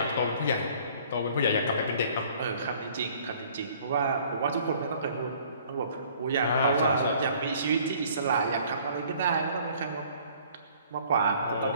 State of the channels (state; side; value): inverted; both; correlation -0.55